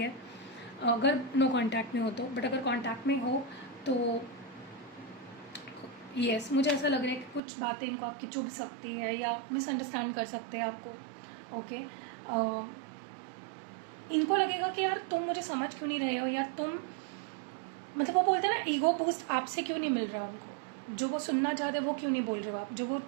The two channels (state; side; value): drops out; left; at 7.4 s